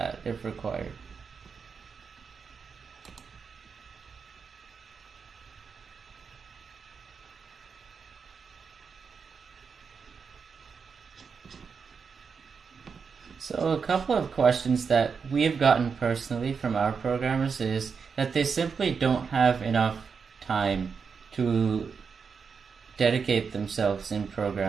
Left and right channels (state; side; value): quieter; left; 5.8 dB